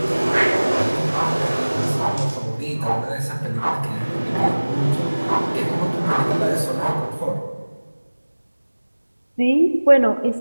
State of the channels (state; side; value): inverted; both; correlation -1.00